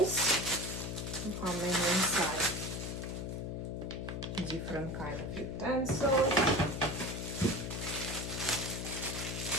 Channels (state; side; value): noise; left; hum, 4 dB below the sound